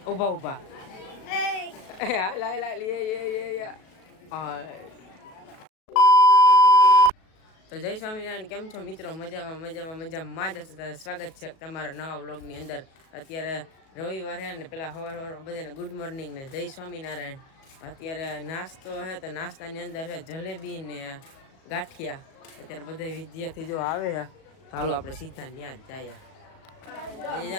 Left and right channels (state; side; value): late; right; 37 ms